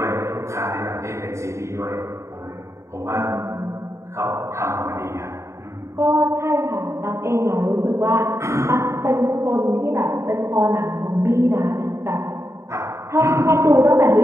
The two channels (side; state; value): left; late; 0.14 ms